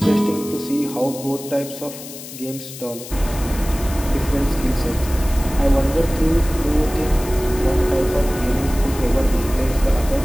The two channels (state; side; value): noise; left; hiss, 13 dB below the sound